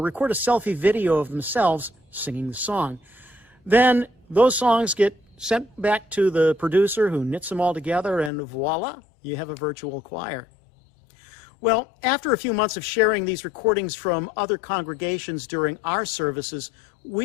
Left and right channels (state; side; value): drops out; right; at 8.3 s